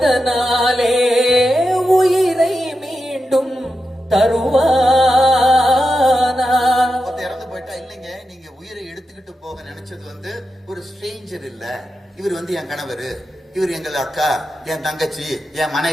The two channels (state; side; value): normal; both; correlation 0.89